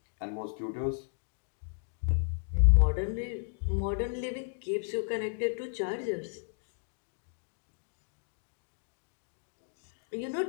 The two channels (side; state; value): right; silent; digital silence